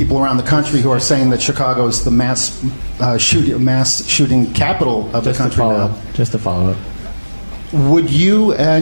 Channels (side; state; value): both; inverted; correlation -1.00